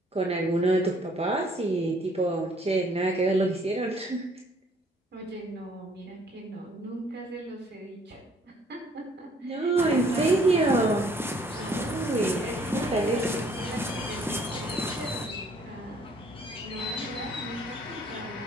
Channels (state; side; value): normal; both; correlation 0.61